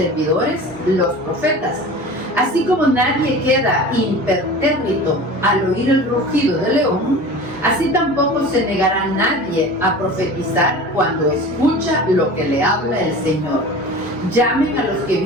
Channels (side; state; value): both; normal; correlation 0.36